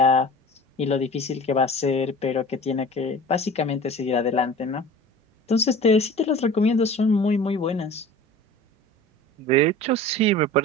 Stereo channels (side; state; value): both; normal; correlation 0.40